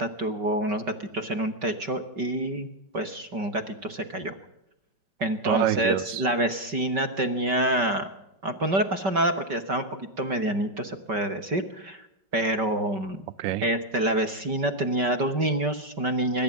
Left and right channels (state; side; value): late; left; 5.2 ms